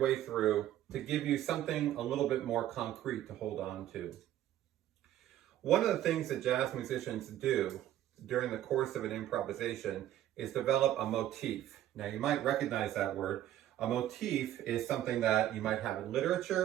through to give you something a little bit more concrete to hold on to. One of the things that jazz musicians do during the course of an improvisation is develop a motif. Now you might recognize that word. A motif is something that you might have in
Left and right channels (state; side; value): quieter; left; 12.5 dB